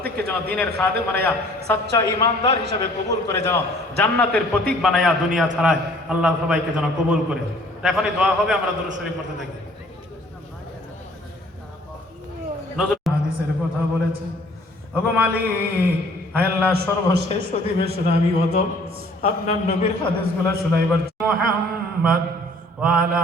যেন দিনের খাদেম বানাইয়া, সাচ্চা ইমানদার হিসাবে কবুল করে, যেন জান্নাতের প্রতীক বানাইয়া দুনিয়া ছাড়ায় আল্লাহ সবাইকে যেন কবুল করে। এখনই দোয়া হবে, আমরা দুরূদ শরীফ পড়তে থাকি। নজরুল হাদিসের কথা বলেছে, ওগো মালিক, হায় আল্লাহ, সর্বশেষ অধিবেশন আমি হতো আপনার নবীর হাদিসগুলো শুনাইবার। মুহাম্মদ ওয়া আলা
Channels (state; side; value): normal; both; correlation 0.55